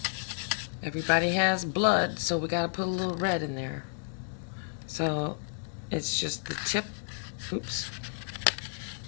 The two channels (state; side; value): silent; right; digital silence